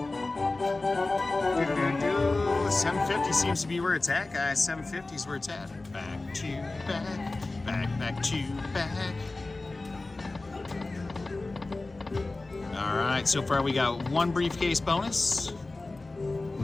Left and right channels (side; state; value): right; quieter; 3.2 dB